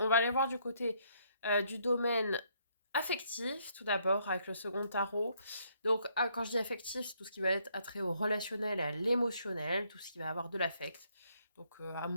va aller voir du côté du domaine affectif, tout d'abord, avec le second tarot. Donc, quand je dis affectif, c'est tout ce qui va être attrait au relationnel et à l'émotionnel, tout ce qui va avoir de l'affect. Donc,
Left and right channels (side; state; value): both; inverted; correlation -0.70